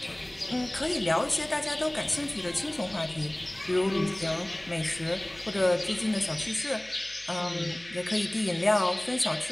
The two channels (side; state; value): left; noise; hum, 26 dB below the sound